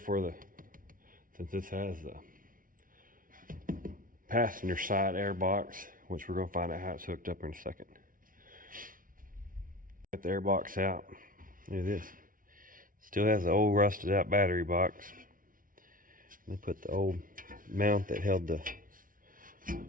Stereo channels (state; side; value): late; left; 0.40 ms